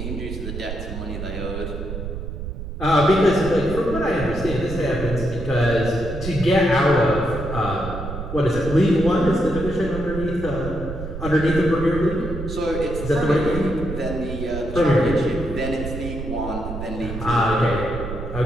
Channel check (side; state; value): right; noise; rumble, 7 dB below the sound